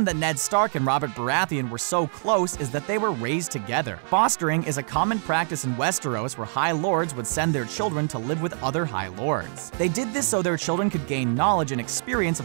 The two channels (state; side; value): silent; left; 62 dB below the other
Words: that Ned Stark and Robert Baratheon were so close is that they were raised together. Fostering is a common practice in Westeros where High Lords would send their children to live with other High Lords. They did this so their children could gain knowledge and experience